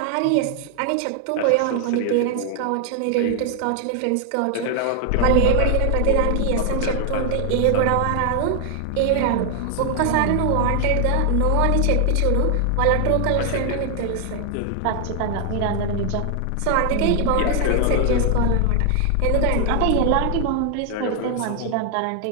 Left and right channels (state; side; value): different; both; correlation 0.00